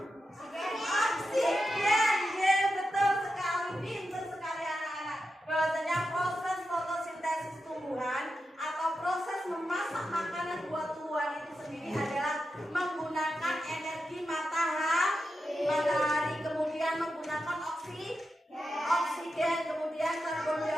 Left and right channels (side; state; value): both; normal; correlation 0.89